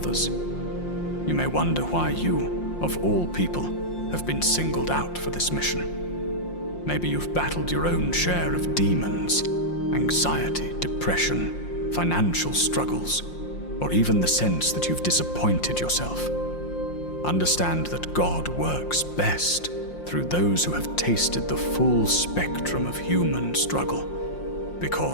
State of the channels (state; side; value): late; right; 5.7 ms